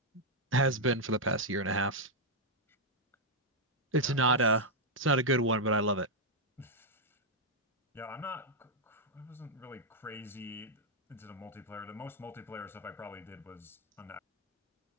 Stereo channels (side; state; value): both; normal; correlation -0.02